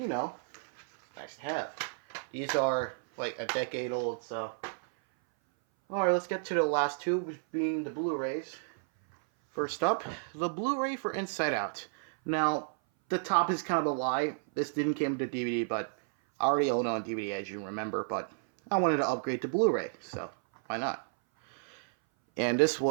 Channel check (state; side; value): silent; left; 57 dB below the other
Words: know, nice to have. These are like a decade old, so. Alright, let's get to the last two, which being the Blu-rays. First up, the Blu-ray for Inside Out. Now, the top is kind of a lie. This didn't come with the DVD, but I already own it on DVD, as you remember, but I wanted to upgrade to Blu-ray, so why not? And this